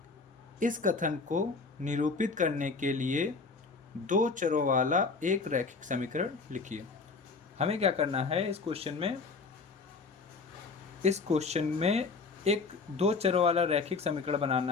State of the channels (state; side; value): quieter; right; 4.4 dB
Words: इस कथन को निरूपित करने के लिए दो चरों वाला एक रैखिक समीकरण लिखिए। हमें क्या करना है इस क्वेश्चन में एक दो चरों वाला रैखिक समीकरण